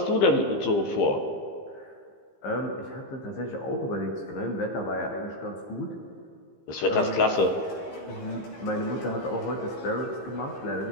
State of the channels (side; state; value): right; late; 15 ms